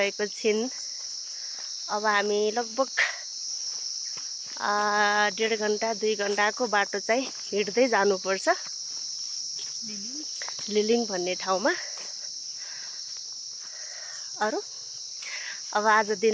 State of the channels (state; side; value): identical; both; correlation 1.00